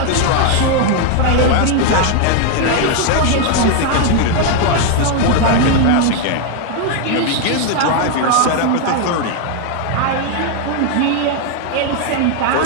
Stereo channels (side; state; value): both; different; correlation 0.01